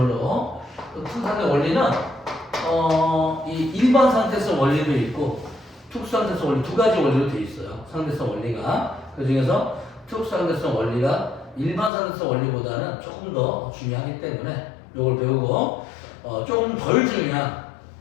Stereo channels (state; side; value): drops out; right; at 11.9 s